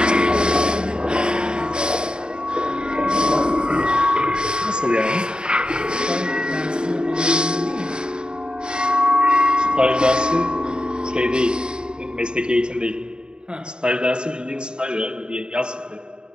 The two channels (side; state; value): left; late; 0.049 ms